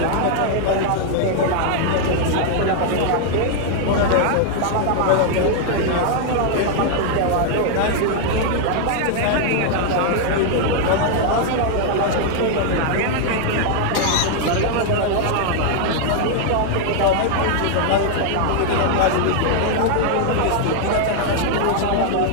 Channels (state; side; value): different; both; correlation 0.00